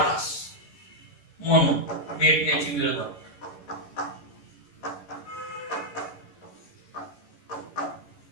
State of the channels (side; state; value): right; late; 11 ms